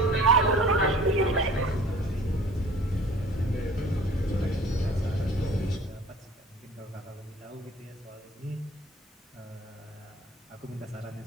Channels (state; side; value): normal; both; correlation 0.47